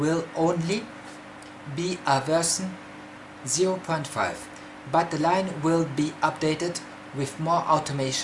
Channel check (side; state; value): both; identical; correlation 1.00